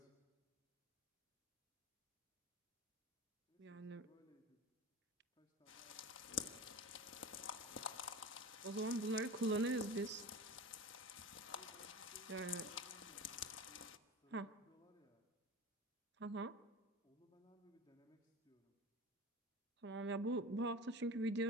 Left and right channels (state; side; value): normal; both; correlation 0.30